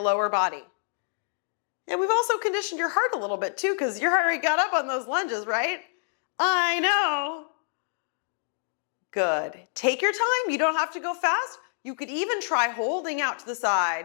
lower body. And we've also conditioned your heart a little bit too, because your heart rate got up on those lunges, right? I know. Good. Take your time. You don't have to go fast. You could even try holding out to the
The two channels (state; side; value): silent; right; digital silence